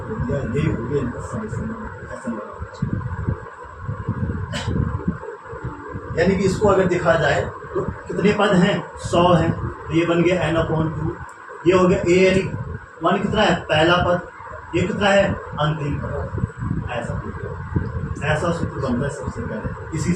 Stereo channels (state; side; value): identical; both; correlation 1.00